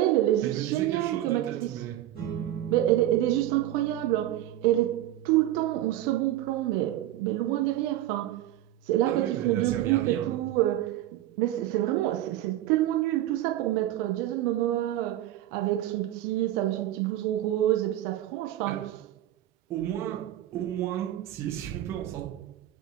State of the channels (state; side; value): quieter; left; 13.5 dB